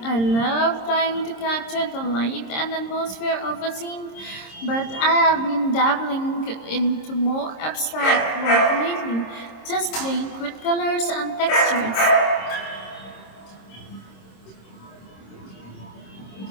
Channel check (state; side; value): late; right; 26 ms